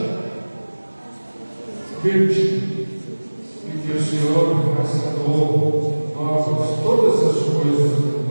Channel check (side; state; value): both; inverted; correlation -1.00